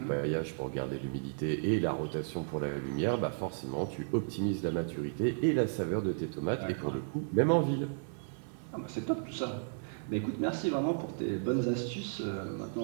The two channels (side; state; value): left; silent; 55 dB below the other